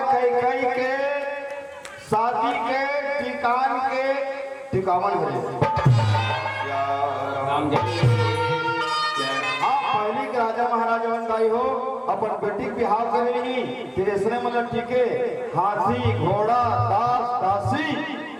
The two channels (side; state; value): both; identical; correlation 1.00